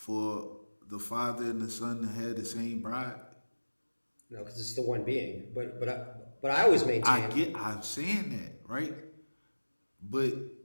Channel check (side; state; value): both; inverted; correlation -1.00